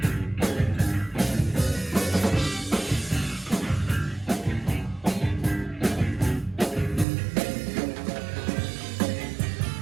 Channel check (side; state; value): left; drops out; at 7.1 s